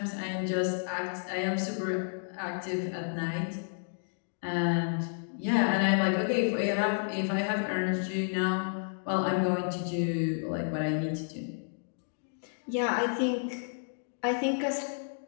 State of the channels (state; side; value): silent; right; digital silence